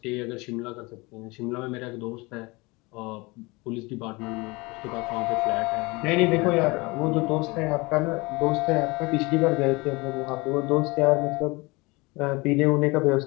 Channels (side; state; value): right; quieter; 24.9 dB